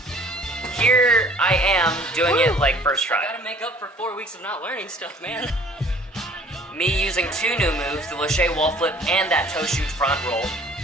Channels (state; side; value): normal; both; correlation 0.53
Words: am doing it like first try. Gotta make up for 4 weeks of not learning stuff, man. Me using 2 new moves, the lache wall flip and that toe shoot front roll.